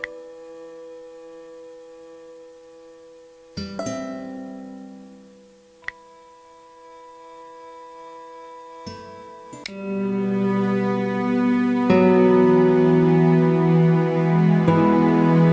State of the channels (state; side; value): identical; both; correlation 1.00